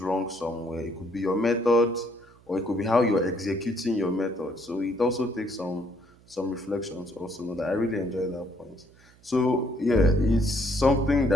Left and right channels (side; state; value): right; noise; hum, 28 dB below the sound